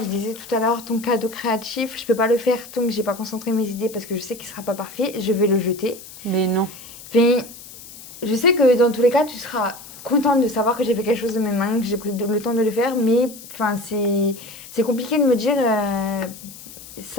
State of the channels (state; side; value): noise; left; hiss, 17 dB below the sound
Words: je disais tout à l'heure, ton cadeau créatif, je peux pas le faire tant que j'ai pas concentré mes idées parce que je sais qu'il sera pas parfait, je vais le jeter. Mais non. Mais je sais que dans tous les cas, tu seras contente de savoir que j'ai fait quelque chose de mes mains, que j'ai pris le temps de le faire, mais enfin, c'est compliqué de me dire